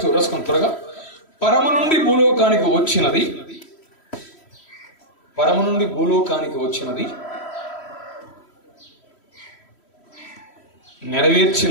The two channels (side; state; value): right; late; 3.1 ms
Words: 2 రాసుకొని త్వరగా. పరము నుండి భూలోకానికి వచ్చినది, పరము నుండి భూలోకానికి వచ్చినది,